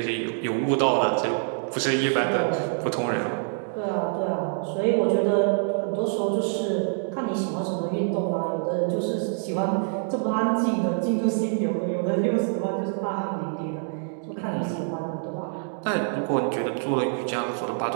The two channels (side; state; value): left; silent; 61 dB below the other